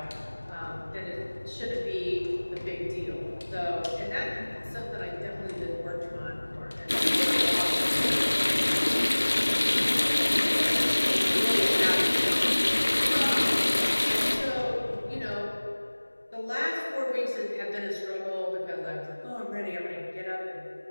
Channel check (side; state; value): both; inverted; correlation -1.00